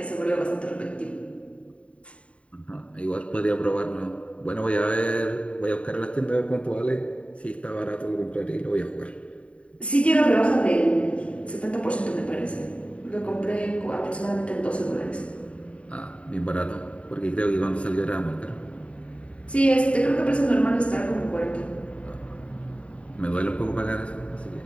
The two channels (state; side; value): late; right; 0.062 ms